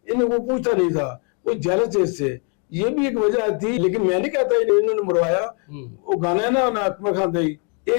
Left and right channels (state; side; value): quieter; right; 39.1 dB